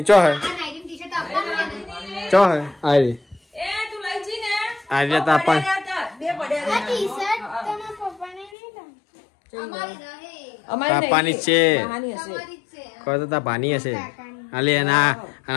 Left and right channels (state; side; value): drops out; right; at 8.5 s